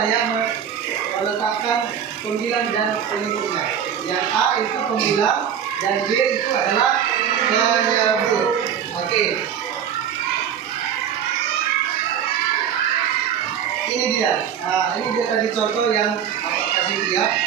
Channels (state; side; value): quieter; left; 8.7 dB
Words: ya meletakkan pembilang dan penyebutnya. Yang A itu pembilang dan B itu adalah penyebut. Oke. Ini dia. Nah, ini dia tadi contoh yang Bapak kasih lihat.